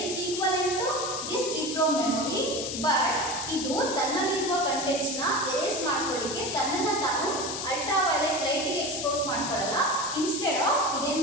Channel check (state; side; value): noise; left; hiss, 5 dB below the sound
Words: it's equivalent to this EEPROM memory, but ಇದು ತನ್ನಲ್ಲಿರುವ ಕಂಟೆಂಟ್ಸ್ ನ ಎರೇಸ್ ಮಾಡ್ಕೊಳ್ಳಿಕ್ಕೆ ತನ್ನನ್ನ ತಾನು ಅಲ್ಟ್ರಾ ವೈಲೆಟ್ ಲೈಟ್ ಗೆ ಎಕ್ಸ್ಪೋಸ್ ಮಾಡ್ಕೊಳ್ಳಲ್ಲ. ಇನ್ಸ್ಟೆಡ್ ಆಫ್ ಇದೇನ್